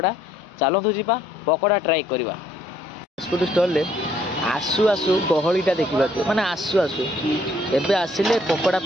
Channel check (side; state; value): both; normal; correlation 0.65